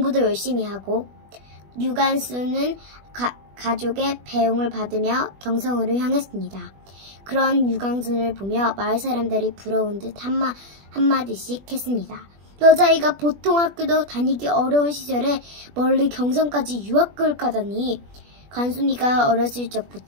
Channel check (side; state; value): left; late; 20 ms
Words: 열심히 하고. 유관순은 가족의 배웅을 받으며 경성으로 향했습니다. 그런 유관순을 보며 마을 사람들이 부러운 듯 한마디씩 했습니다. 여자아이가 보통 학교도 다니기 어려운 시절에 멀리 경성까지 유학을 가다니. 관순이가 어렸을